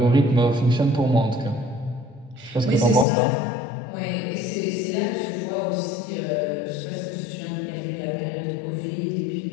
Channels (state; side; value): drops out; right; at 3.1 s